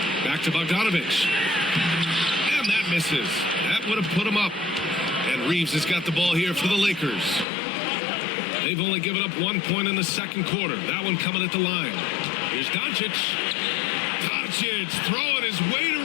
Back to Bogdanovich. And that misses. That would have put him up. And Reeves has got the ball here for the Lakers. They've only given up 1 point in the second quarter. That one coming at the line. Here's Doncic. Doncic throwing his weight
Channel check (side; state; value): right; drops out; at 7.5 s